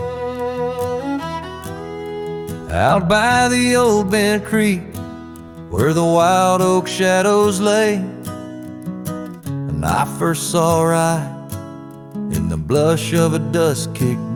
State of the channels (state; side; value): identical; both; correlation 1.00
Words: Out by the old bent creek, where the wild oak shadows lay, and I first saw Rye in the blush of a